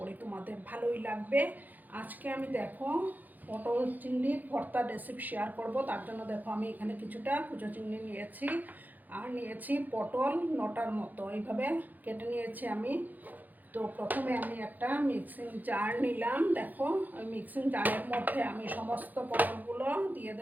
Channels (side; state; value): left; late; 0.083 ms